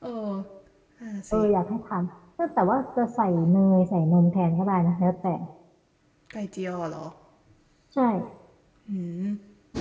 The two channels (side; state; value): both; identical; correlation 1.00